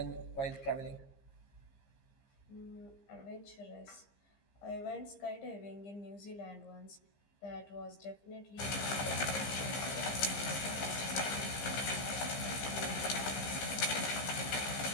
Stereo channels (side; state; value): right; late; 15 ms